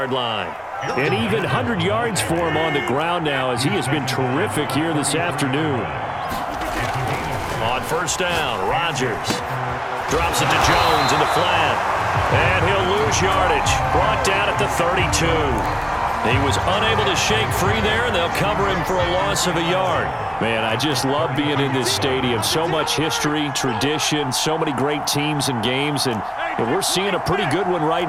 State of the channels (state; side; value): identical; both; correlation 1.00